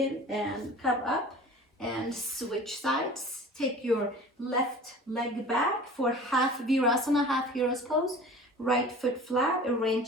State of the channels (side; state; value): both; normal; correlation 0.41